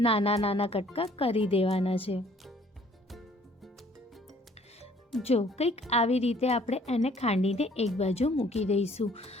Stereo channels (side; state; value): both; normal; correlation 0.59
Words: નાના નાના કટકા કરી દેવાના છે. જો કંઈક આવી રીતે આપણે એને ખાંડીને એક બાજુ મૂકી દઈશું.